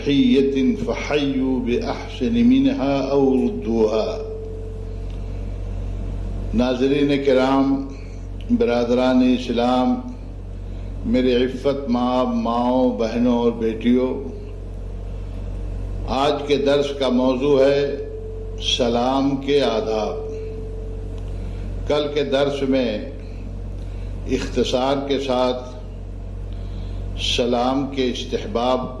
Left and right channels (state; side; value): identical; both; correlation 1.00